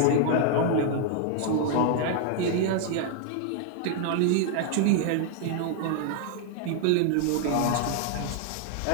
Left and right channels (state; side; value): different; both; correlation 0.00